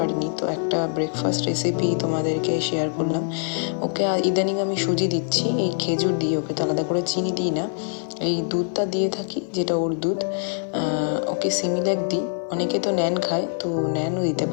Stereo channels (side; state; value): right; silent; 56 dB below the other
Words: তো একটা ব্রেকফাস্ট রেসিপি তোমাদেরকে শেয়ার করলাম। ওকে ইদানিং আমি সুজি দিচ্ছি, এই খেজুর দিয়ে, ওকে তো আলাদা করে চিনি দিই না, এই দুধটা দিয়ে থাকি যেটা ওর দুধ। ওকে সিমিল্যাক দিই, অনেকে তো ন্যান খায়, তো ন্যানও দিতে